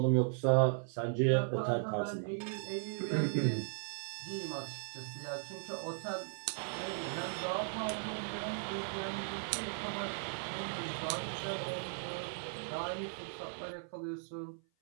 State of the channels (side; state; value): left; silent; 53 dB below the other